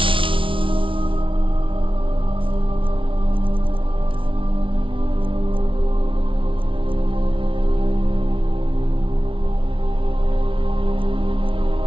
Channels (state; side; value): late; left; 0.25 ms